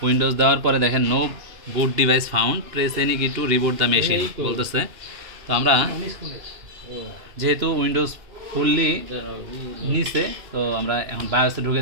উইন্ডোজ দেওয়ার পরে দেখেন নো বুট ডিভাইস ফাউন্ড, প্রেস এনি কি টু রিবুট দ্য মেশিন বলতেছে। তো আমরা যেহেতু উইন্ডোজ ফুললি নিচে, তো আমরা এখন বায়োসে ঢুকে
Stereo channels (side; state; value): left; late; 2.9 ms